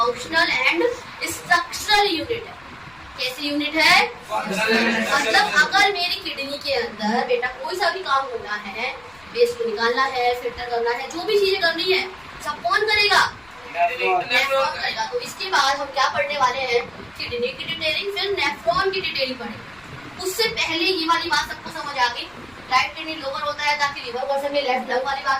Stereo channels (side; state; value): left; noise; rumble, 29 dB below the sound